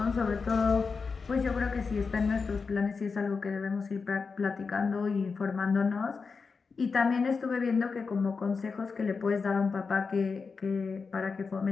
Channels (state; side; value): quieter; right; 4.9 dB